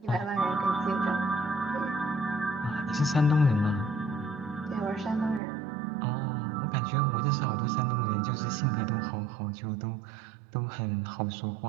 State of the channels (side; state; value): left; drops out; at 5.4 s